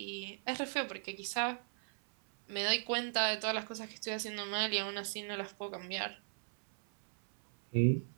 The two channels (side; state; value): left; silent; 53 dB below the other